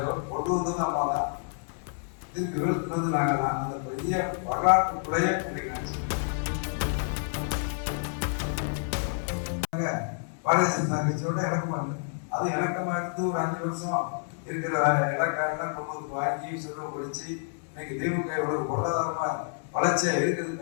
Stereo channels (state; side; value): silent; right; 59 dB below the other